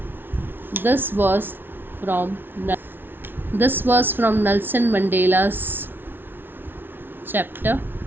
This was from this was from Nelson Mandela's chapter.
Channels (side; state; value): left; late; 0.10 ms